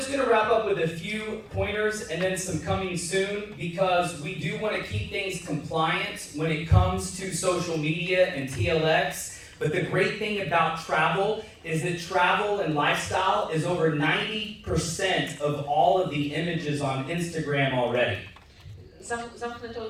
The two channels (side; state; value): both; identical; correlation 1.00